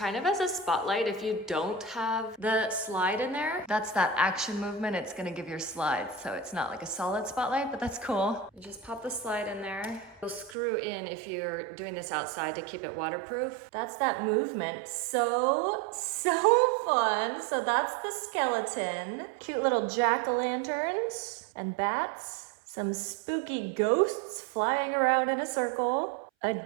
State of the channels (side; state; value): left; drops out; at 10.6 s